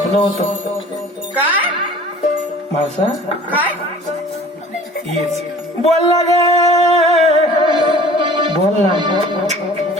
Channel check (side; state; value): both; normal; correlation 0.47